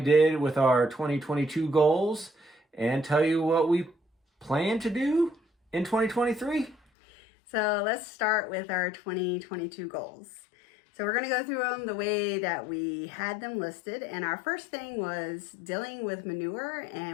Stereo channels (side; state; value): right; drops out; at 6.8 s